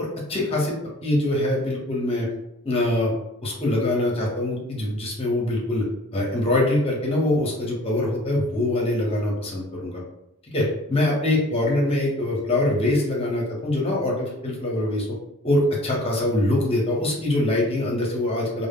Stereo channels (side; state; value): both; normal; correlation 0.50